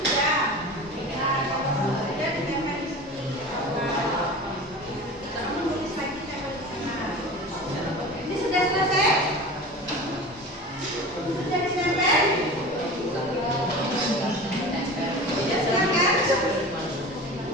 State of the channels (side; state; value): both; normal; correlation 0.34